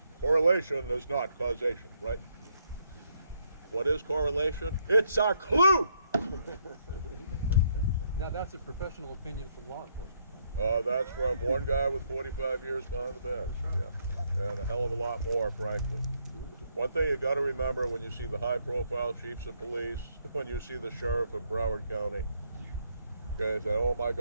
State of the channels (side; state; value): both; inverted; correlation -0.73